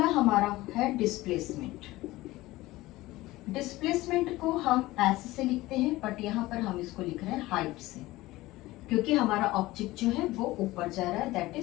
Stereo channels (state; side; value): quieter; right; 18.4 dB